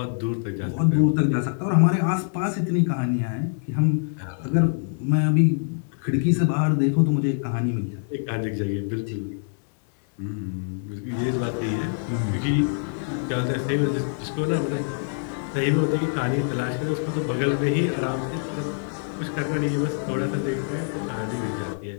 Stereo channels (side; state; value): right; silent; digital silence